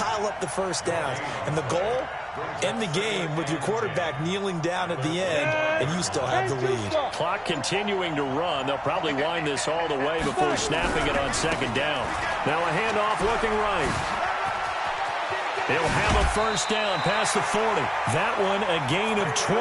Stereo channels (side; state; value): both; identical; correlation 1.00